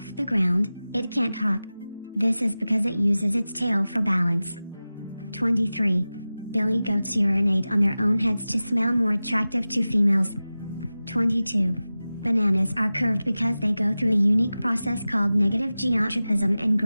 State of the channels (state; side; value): inverted; both; correlation -0.96